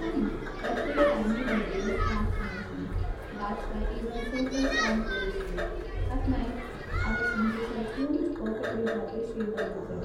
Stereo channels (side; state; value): both; identical; correlation 1.00